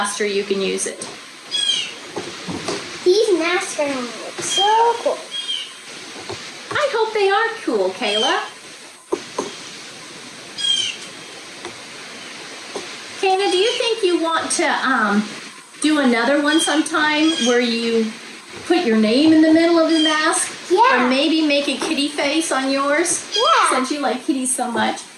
you can use it. These masks are gonna look so cool. I hope they are cool, Kayla. Kayla, do you think you want to do another one sometime where you put your name in the middle of the mask? Yeah. Or maybe make a kitty face on yours? Yeah. Since you like kitties so much.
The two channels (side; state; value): both; identical; correlation 1.00